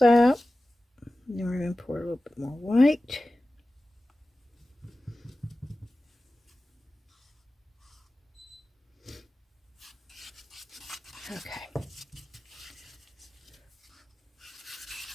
out. And then we're going to pour a little bit more white.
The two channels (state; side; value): normal; both; correlation 0.96